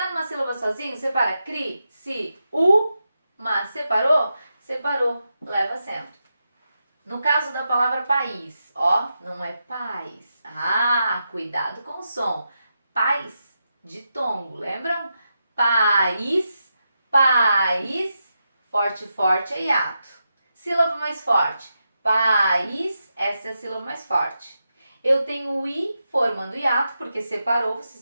numa sílaba sozinho? Separa. Cri, si, u, mas separou? Separou. Leva acento. No caso da palavra país, ó, não é paz. Ah, cuidado com o som. Paz de tongo, lembram? País, país, forte, forte é hiato. Sílaba mais forte. País, essa é a sílaba mais forte. Eu tenho o i formando hiato, porque separou, vocês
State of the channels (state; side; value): inverted; both; correlation -0.87